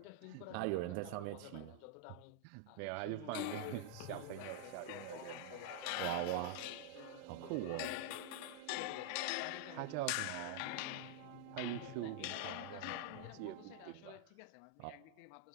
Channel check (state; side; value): different; both; correlation 0.00